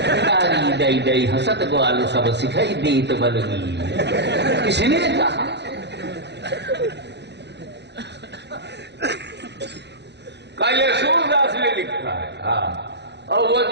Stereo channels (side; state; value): left; late; 0.50 ms